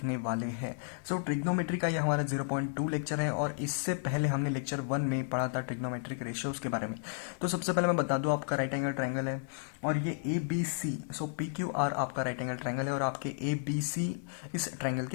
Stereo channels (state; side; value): silent; right; digital silence